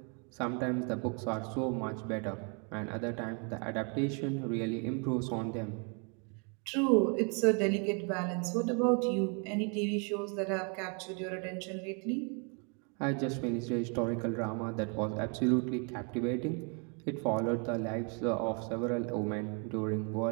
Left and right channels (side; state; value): left; quieter; 37.1 dB